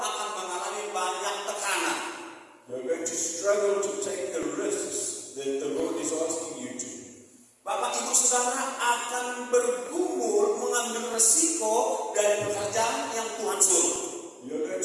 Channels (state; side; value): identical; both; correlation 1.00